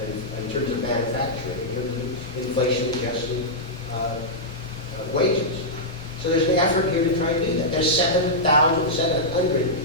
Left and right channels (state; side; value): normal; both; correlation -0.09